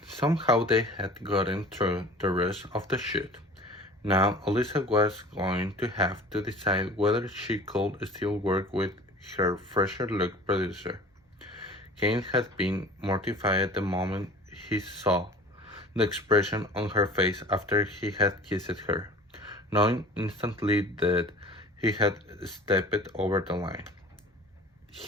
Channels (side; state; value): both; normal; correlation 0.44